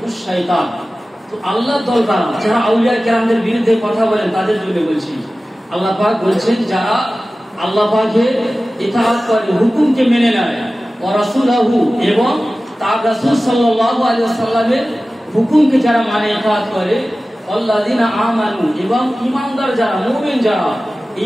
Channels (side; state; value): both; normal; correlation 0.96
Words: শয়তান। তো আল্লাহর দল কারা? যারা আউলিয়া কেরামদের বিরুদ্ধে কথা বলেন, তাদের জন্য বলছি। আল্লাহ পাক বলছেন যারা আল্লাহ পাকের ইতাআত করে, হুকুমকে মেনে নেয়, ওয়া রাসূলহু এবং তার রাসূল সাল্লাল্লাহু আলাইহি ওয়াসাল্লামের হুকুমকে যারা মানে ইতাআত করে, আল্লাযিনা আমানু এবং ঈমানদার যারা, মুমিন যারা,